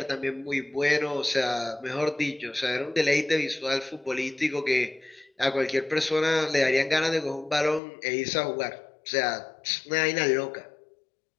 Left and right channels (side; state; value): right; drops out; at 7.8 s